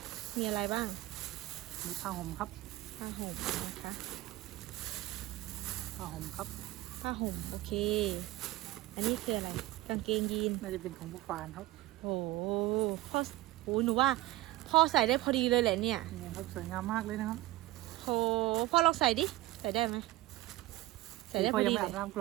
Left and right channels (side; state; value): left; quieter; 17.7 dB